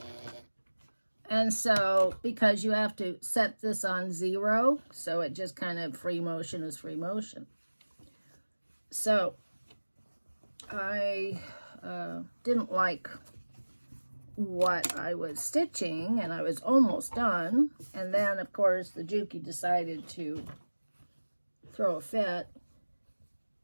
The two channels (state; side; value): inverted; both; correlation -1.00